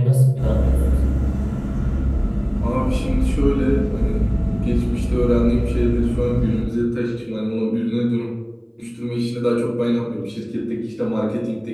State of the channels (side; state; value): both; identical; correlation 1.00